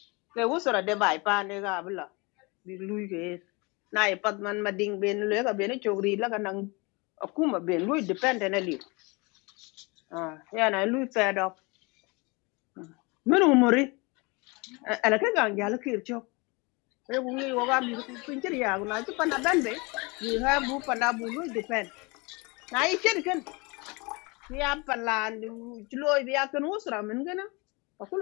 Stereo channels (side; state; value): right; quieter; 27.4 dB